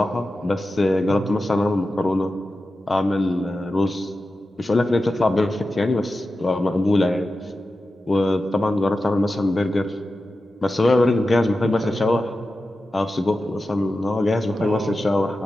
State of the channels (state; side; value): normal; both; correlation 0.93